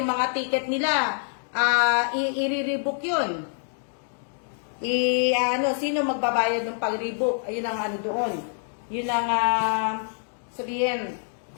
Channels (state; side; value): silent; right; digital silence